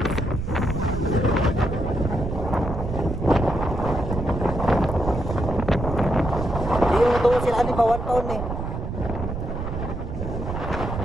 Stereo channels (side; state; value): right; noise; rumble, 5 dB below the sound